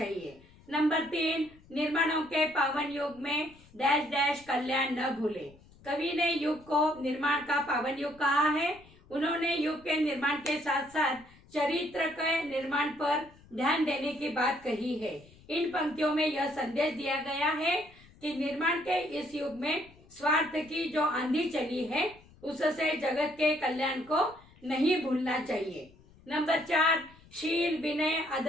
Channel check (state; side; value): noise; left; rumble, 25 dB below the sound